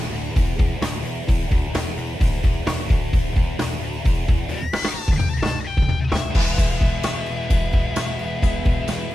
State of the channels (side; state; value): both; normal; correlation 0.93